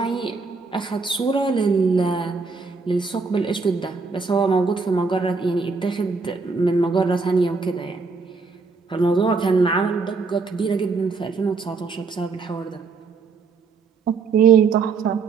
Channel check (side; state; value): left; quieter; 4.5 dB